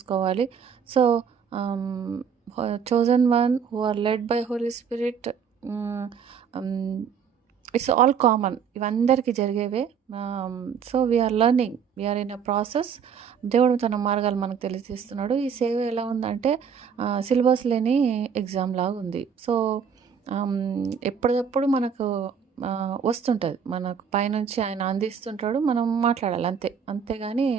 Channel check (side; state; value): left; quieter; 7.0 dB